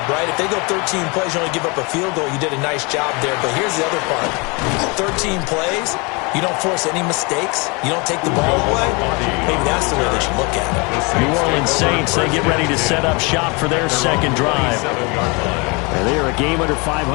right? If they go 13 plays, you only give up a field goal, you did a nice job there. But here's the other part. 13 plays, you don't force any mistakes, you don't take the ball away. Maybe that's the way they should look at it. New Orleans Saints, they get ready to set up shop for their 2nd drive. And they are a game under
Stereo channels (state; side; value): quieter; right; 29.3 dB